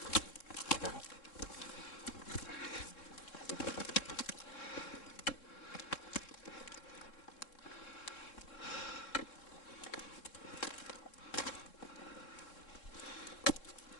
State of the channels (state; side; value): late; right; 3.7 ms